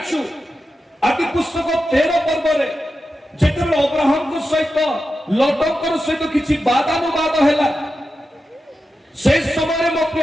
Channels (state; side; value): normal; both; correlation 0.90